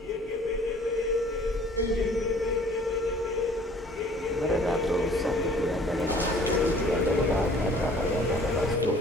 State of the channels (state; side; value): normal; both; correlation 0.54